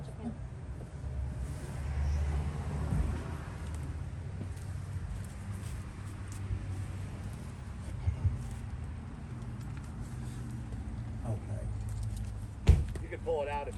Okay. You can pull it out if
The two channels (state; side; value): identical; both; correlation 1.00